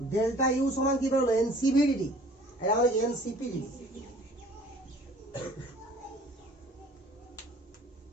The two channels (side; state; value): both; normal; correlation 0.51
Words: ডেল্টা ইউ সমান কি বেরোলো এনসিভি ডিটি, এটা মানে এনসিপি ডিটি।